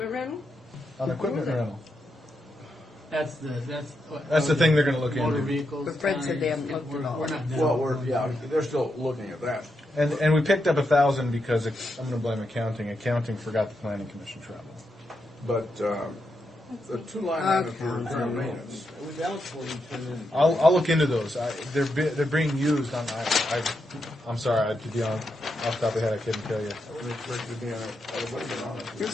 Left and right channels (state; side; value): normal; both; correlation 0.84